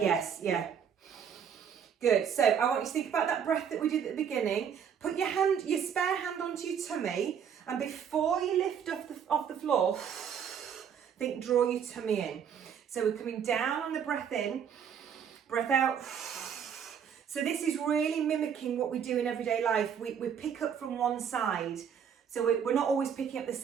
yeah. Good, so I want you to think about that breath that we did at the beginning. Put your spare hand onto your tummy, and before you lift off the floor, draw your tummy in. So we're coming down on the breath in, breath out. So this is really mimicking what we do in everyday life. We pick up from one side. So we're not always picking up the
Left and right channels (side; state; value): left; quieter; 7.9 dB